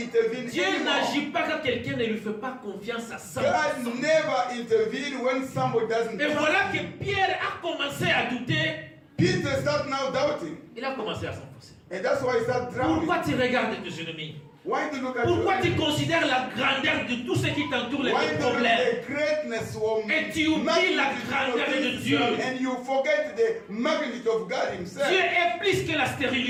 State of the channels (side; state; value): both; identical; correlation 1.00